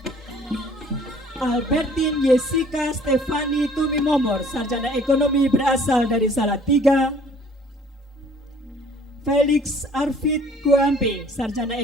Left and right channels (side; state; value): both; normal; correlation 0.55